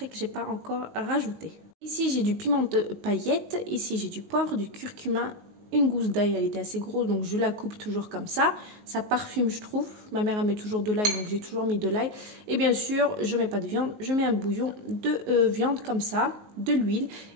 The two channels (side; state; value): left; late; 19 ms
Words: que je n'ai pas encore rajouté. Ici, j'ai du piment de paillettes. Ici, j'ai du poivre, du curcuma. Une gousse d'ail, elle était assez grosse, donc je la coupe toujours comme ça. Ça parfume, je trouve. Ma mère, elle met toujours de l'ail, donc j'ai toujours mis de l'ail. Et bien sûr, je ne mets pas de viande. Je mets un bouillon de viande comme ça, de l'huile